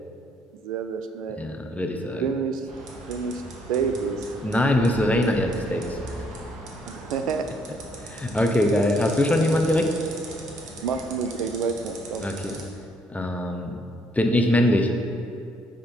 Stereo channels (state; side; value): normal; both; correlation 0.68